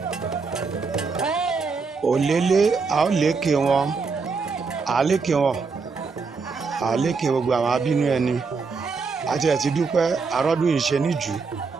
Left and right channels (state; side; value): quieter; left; 4.7 dB